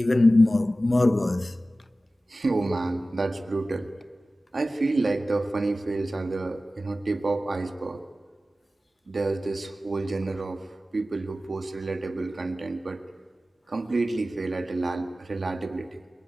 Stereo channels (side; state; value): both; normal; correlation 0.96